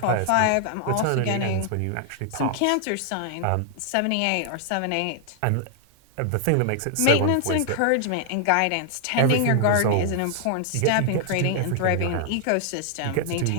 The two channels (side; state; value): both; different; correlation 0.00